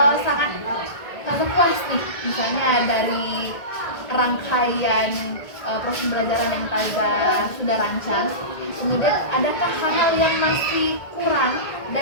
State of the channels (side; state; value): right; late; 1.8 ms